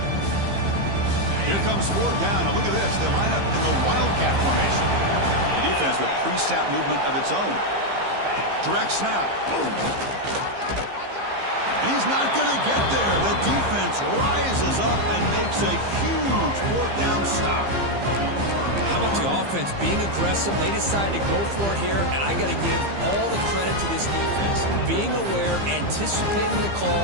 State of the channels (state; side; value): late; left; 15 ms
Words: Here comes fourth down. Now look at this. They line up in the Wildcat formation. The defense with pre-snap movement of its own. Direct snap. Boom. And he's not going to get there. The defense rises up and makes a huge fourth down stop. How about the offense being aggressive? They decided to go for it here, and I got to give all the credit to this defense. Being aware, anticipating the